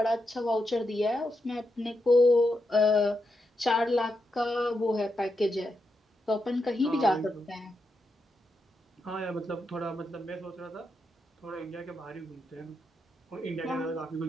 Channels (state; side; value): normal; both; correlation 0.85